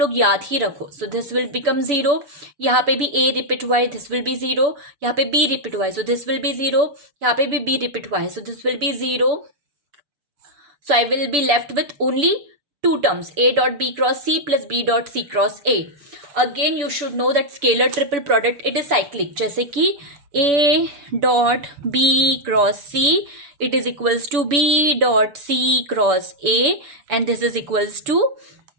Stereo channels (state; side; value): late; left; 7.0 ms